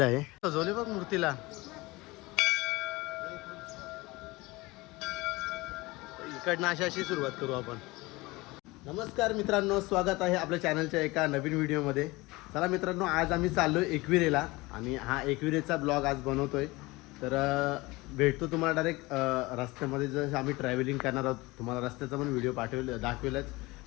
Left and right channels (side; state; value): right; quieter; 22.2 dB